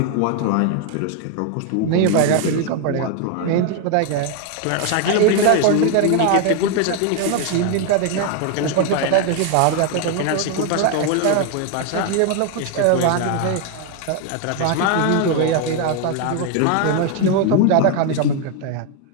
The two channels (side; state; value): both; different; correlation 0.01